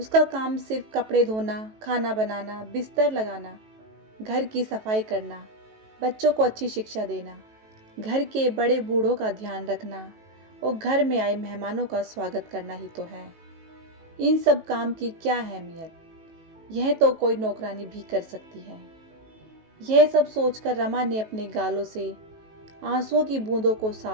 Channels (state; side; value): late; left; 18 ms